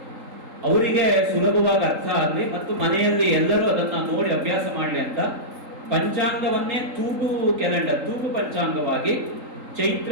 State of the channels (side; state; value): left; late; 3.8 ms